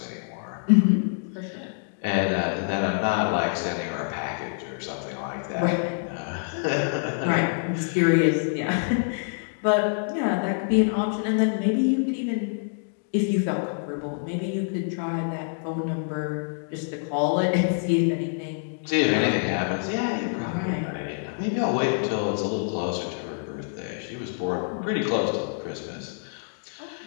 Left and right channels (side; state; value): right; silent; digital silence